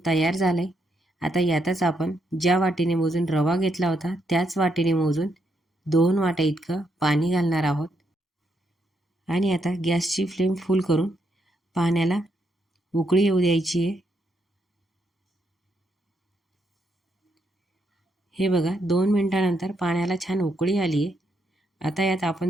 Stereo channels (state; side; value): normal; both; correlation 0.78